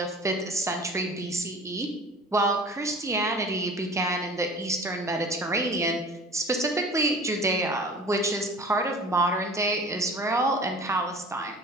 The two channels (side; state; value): both; normal; correlation 0.42